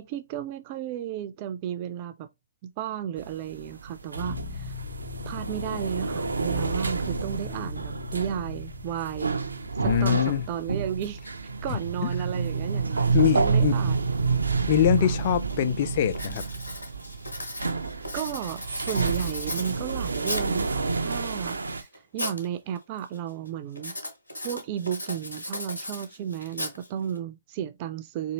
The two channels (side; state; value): both; inverted; correlation -0.59